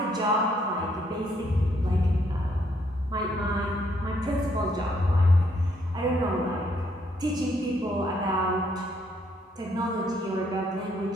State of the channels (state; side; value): normal; both; correlation 0.71